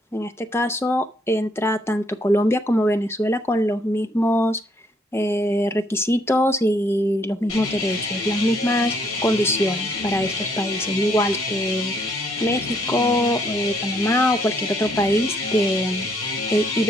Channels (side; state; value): both; normal; correlation 0.68